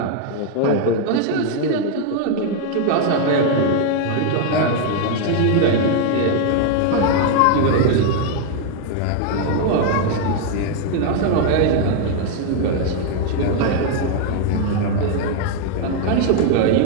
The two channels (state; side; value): different; both; correlation 0.00